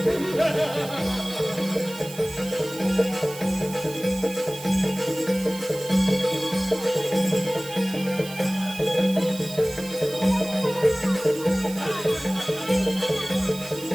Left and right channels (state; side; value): noise; right; hiss, 14 dB below the sound